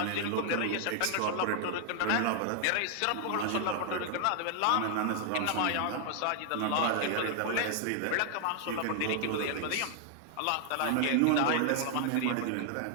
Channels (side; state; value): both; different; correlation 0.00